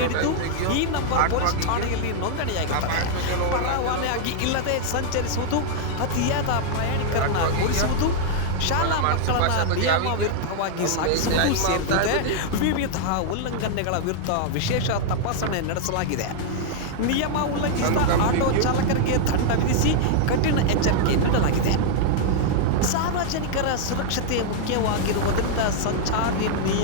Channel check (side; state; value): both; different; correlation -0.01